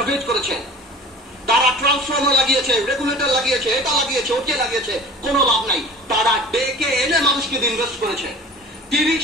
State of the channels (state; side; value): normal; both; correlation 0.41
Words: করেছে। তারা ট্রান্সফর্মার লাগিয়েছে, রেগুলেটর লাগিয়েছে, এটা লাগিয়েছে, ওকে লাগিয়েছে, কোনো লাভ নাই। তারা ডেকে এনে মানুষকে ইনভেস্ট করেছে। 30